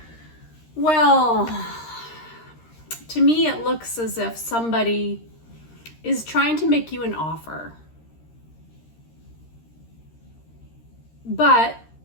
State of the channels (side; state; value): right; late; 13 ms